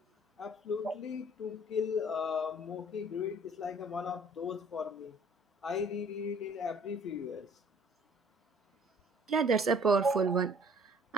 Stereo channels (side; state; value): both; normal; correlation 0.55